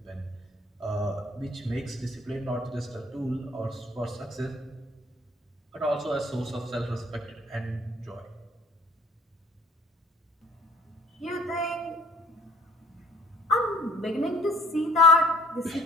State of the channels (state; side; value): normal; both; correlation 0.56